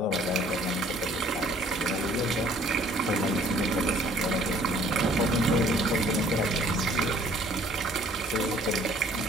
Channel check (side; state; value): both; normal; correlation 0.57